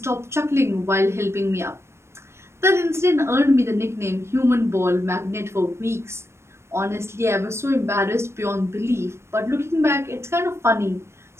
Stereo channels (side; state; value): left; late; 0.13 ms